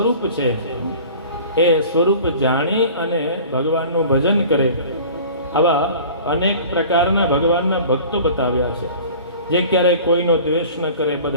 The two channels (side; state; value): both; inverted; correlation -0.43